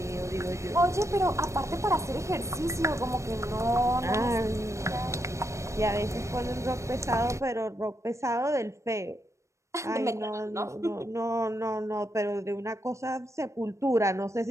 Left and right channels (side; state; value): left; late; 0.14 ms